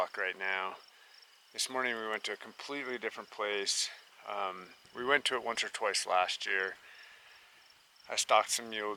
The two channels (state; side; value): identical; both; correlation 1.00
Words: right now. This morning we went to a completely different place. We went to it once or twice last year. I stalked some mule